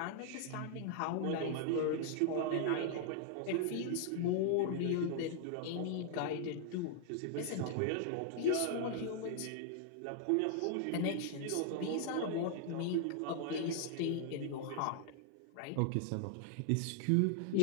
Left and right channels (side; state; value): both; different; correlation 0.00